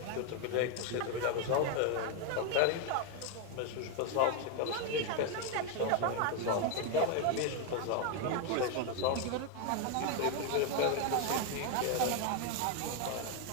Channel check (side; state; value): both; different; correlation 0.01